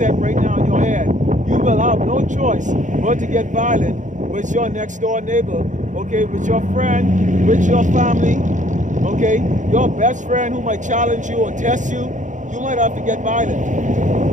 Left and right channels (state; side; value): late; left; 0.36 ms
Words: right now in your head. You will have no choice but to get violent with your next door neighbor, okay, with your friend, with your family. Okay, your best friend who might challenge you or test you, you might have to get violent.